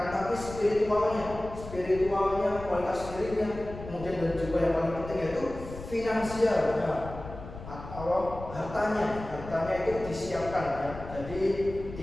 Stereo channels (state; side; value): noise; left; rumble, 12 dB below the sound